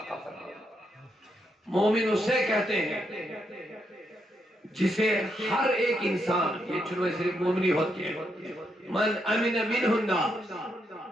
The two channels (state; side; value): normal; both; correlation 0.80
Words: کا فرمان۔ مومن اسے کہتے ہیں جسے ہر ایک انسان، یہ چنوے صرف مومنی ہوتی ہے، من امن منہ الناس،